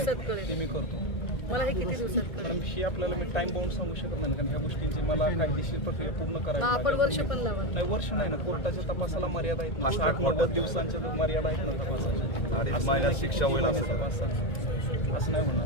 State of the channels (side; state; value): right; late; 1.6 ms